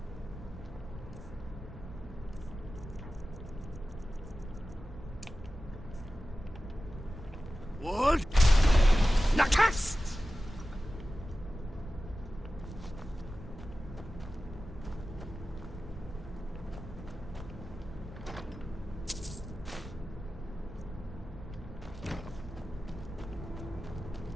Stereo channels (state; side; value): normal; both; correlation 0.94